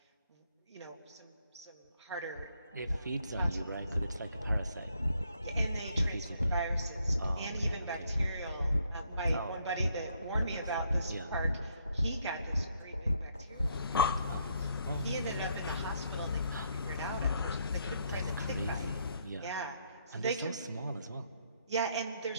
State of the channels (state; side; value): inverted; both; correlation -0.71